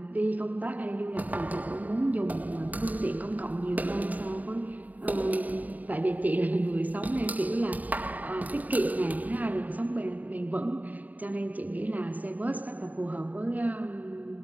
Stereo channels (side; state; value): left; late; 0.077 ms